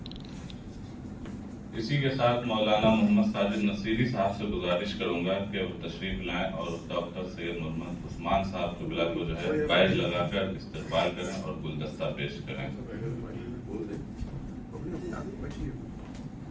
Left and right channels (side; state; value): both; identical; correlation 1.00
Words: اسی کے ساتھ مولانا محمد ساجد نصیری صاحب سے گزارش کروں گا کہ وہ تشریف لائیں اور ڈاکٹر سید محمد عثمان صاحب قبلہ کو جو ہے بیج لگا کر استقبال کریں اور گلدستہ پیش کریں.